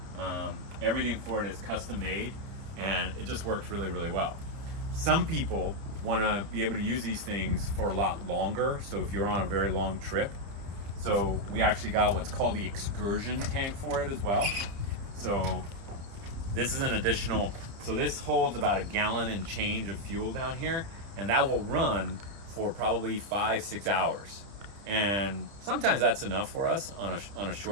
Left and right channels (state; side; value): late; left; 30 ms